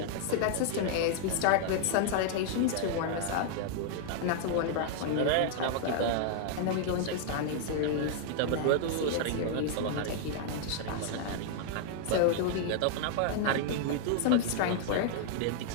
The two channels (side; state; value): both; different; correlation -0.01